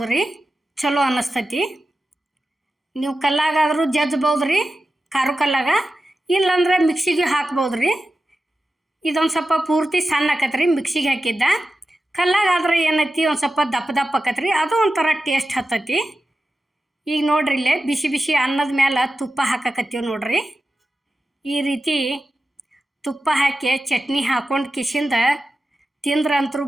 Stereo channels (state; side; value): normal; both; correlation 0.92